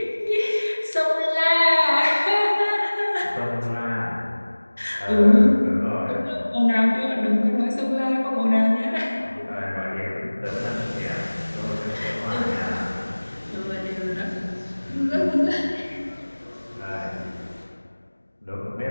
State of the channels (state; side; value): inverted; both; correlation -1.00